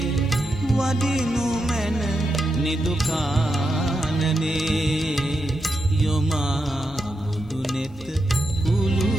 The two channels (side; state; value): both; normal; correlation 0.85